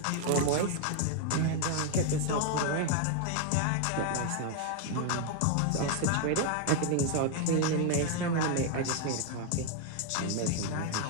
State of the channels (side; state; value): both; different; correlation 0.01